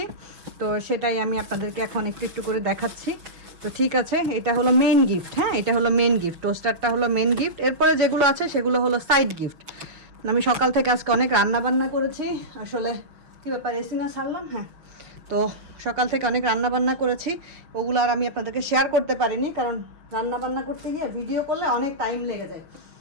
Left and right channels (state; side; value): late; left; 6.2 ms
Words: তো সেটাই আমি আপনাদেরকে এখন একটু একটু করে দেখাচ্ছি। তো ঠিক আছে, এটা হলো মেন গিফট। হ্যাঁ, এটা হলো মেন গিফট, টোস্টারটা হলো মেন গিফট। এরপরে যেগুলো আছে সেগুলো হলো সাইড গিফট। আমি সকাল থেকে আজকে অনেক রান্না বান্না করেছি। আসলে কী ব্যাপার, এসি না ছাড়লাম? হ্যাঁ, তো সকাল থেকে অনেক রান্না বান্না করেছি, ওগুলো আর আমি আপনাদেরকে শেয়ার করতে পারিনি, কারণ রান্না বান্না করতে গিয়ে ভিডিও করলে অনেক টাইম লেগে যায়।